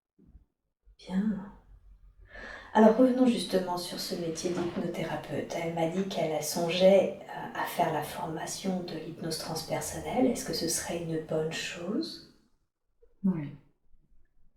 Bien. Alors revenons justement sur ce métier d'hypnothérapeute. Elle m'a dit qu'elle songeait à faire la formation de l'hypnose transpersonnelle. Est-ce que ce serait une bonne chose? Oui.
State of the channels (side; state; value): both; identical; correlation 1.00